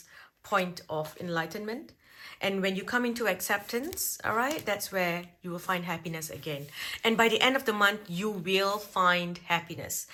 point of enlightenment. And when you come into acceptance, all right, that's where you will find happiness again. And by the end of the month, you will find happiness.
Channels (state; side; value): identical; both; correlation 1.00